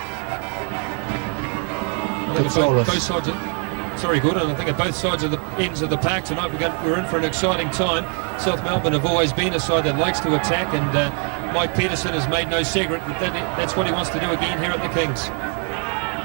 Both sides of, sorry, Gordon, I think at both sides of the ends of the park tonight we're in for an exciting time. South Melbourne have always been a side that likes to attack, and Mike Peterson has made no secret that that's what he wants to do again here at the Kings.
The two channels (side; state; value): left; quieter; 34.8 dB